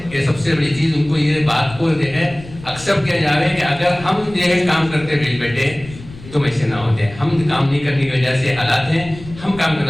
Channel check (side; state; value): left; noise; rumble, 17 dB below the sound